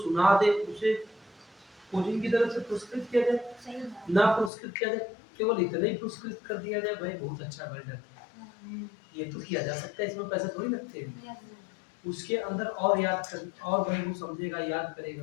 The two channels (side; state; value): right; drops out; at 4.5 s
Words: सुना दे उसे कोचिंग की तरफ से पुरस्कृत किया जाए, ना पुरस्कृत किया जाए, केवल इतना ही पुरस्कृत कर दिया जाए, भाई बहुत अच्छा बेटर, ये तो किया जा सकता है, इसमें पैसे थोड़ी लगते हैं। उसके अंदर और याद कर, और भाई वो समझेगा, याद